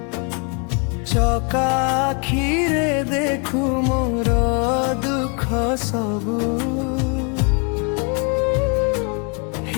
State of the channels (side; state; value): right; quieter; 35.7 dB